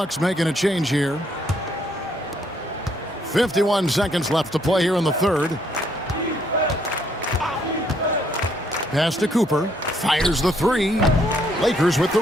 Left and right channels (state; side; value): normal; both; correlation 0.70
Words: making a change here. 51 seconds left to play here in the third. Pass to Cooper. Fires the 3. Lakers with the